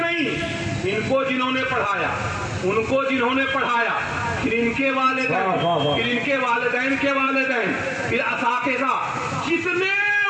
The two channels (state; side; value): identical; both; correlation 1.00